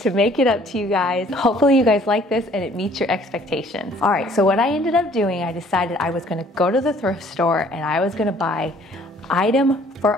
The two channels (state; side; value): normal; both; correlation 0.57